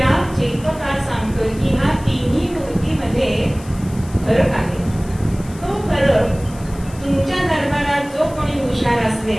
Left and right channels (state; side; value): noise; left; hiss, 21 dB below the sound